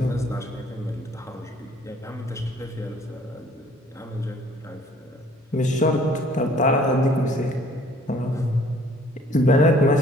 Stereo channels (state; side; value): normal; both; correlation 0.57